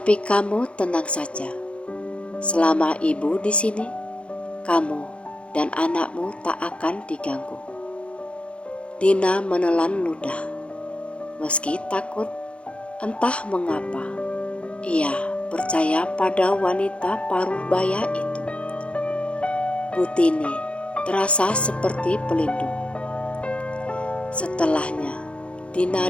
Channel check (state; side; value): late; right; 0.060 ms